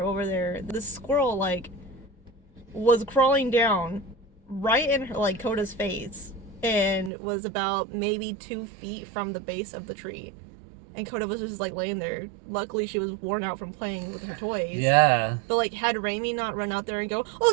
over there, the squirrel, like, was crawling down right in her, like, Coda's face, and was about maybe 2 feet from the base of the tree. And Coda was just, like, laying there. Luckily, she was worn out from playing with her toys. Yeah. But, like, had Raimi not run out there and go, "Oh,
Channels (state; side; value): drops out; left; at 7.1 s